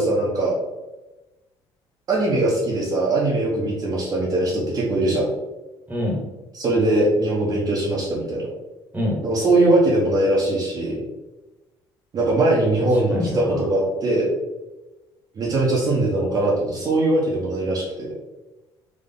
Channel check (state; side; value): normal; both; correlation 0.57